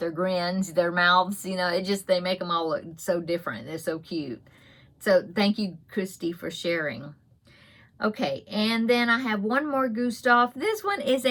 their grins, their mouths, you know, they make them all look so different. They're so cute. So thank you, Christy, for sharing. Okay, and then I have one more Gustav. This one is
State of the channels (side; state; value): both; identical; correlation 1.00